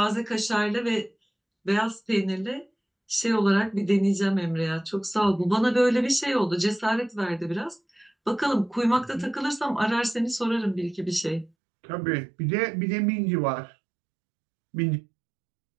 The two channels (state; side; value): drops out; left; at 11.5 s